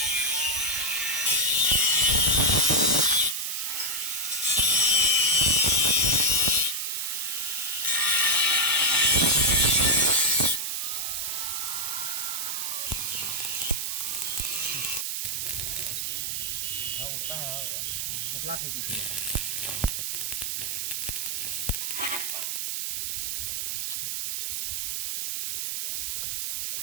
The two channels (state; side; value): noise; right; hiss, 1 dB below the sound